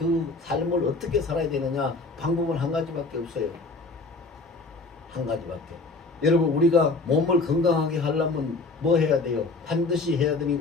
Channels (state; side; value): quieter; right; 3.6 dB